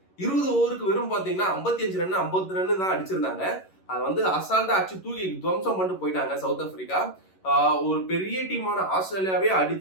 20 ஓவருக்கு வெறும் பாத்தீங்கன்னா 55 ரன்னு 50 ரன்னு தான் அடிச்சிருந்தாங்க. அதை வந்து அசால்ட்டா அடிச்சு தூக்கி துவம்சம் பண்ணிட்டு போயிட்டாங்க சவுத் ஆப்பிரிக்கா. ஒரு பெரிய டீமான ஆஸ்திரேலியாவே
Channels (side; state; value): right; late; 11 ms